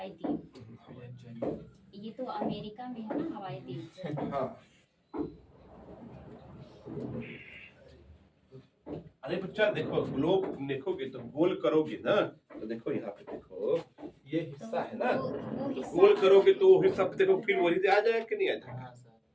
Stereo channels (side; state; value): both; identical; correlation 1.00